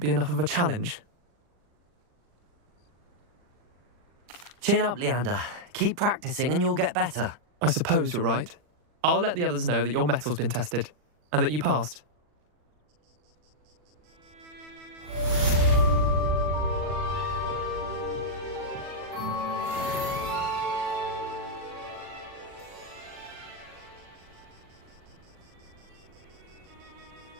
enough of a challenge. Chin up, Leander. Keep practicing and you'll get better. I suppose you're right. I'll let the others know that your metal's been tested, and that you passed.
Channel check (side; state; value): left; late; 40 ms